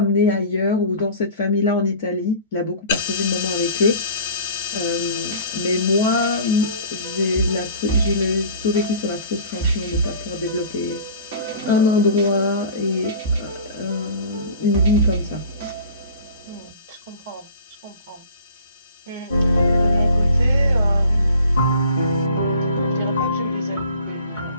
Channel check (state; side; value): inverted; both; correlation -0.44